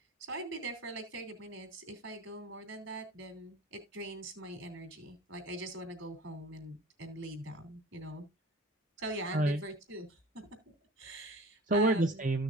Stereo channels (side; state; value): both; normal; correlation 0.42